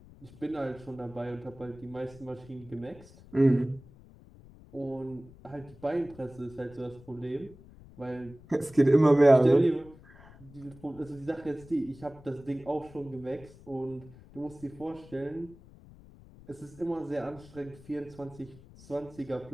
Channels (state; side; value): noise; left; rumble, 21 dB below the sound